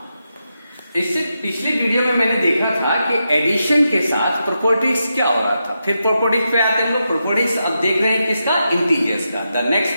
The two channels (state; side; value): inverted; both; correlation -0.86